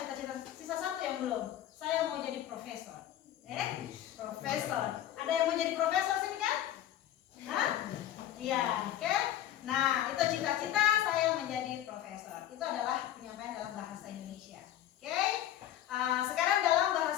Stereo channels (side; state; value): right; quieter; 12.0 dB